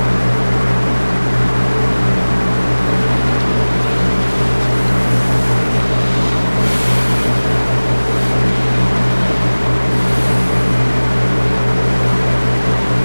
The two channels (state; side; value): inverted; both; correlation -1.00